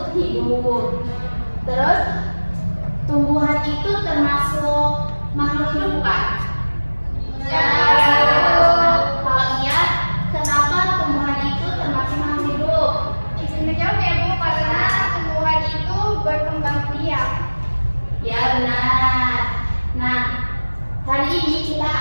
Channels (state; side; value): inverted; both; correlation -1.00